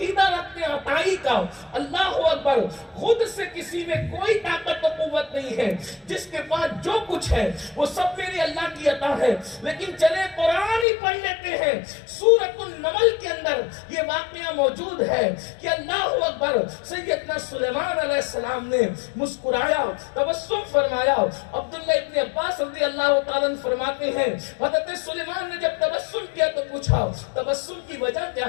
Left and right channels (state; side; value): drops out; right; at 10.9 s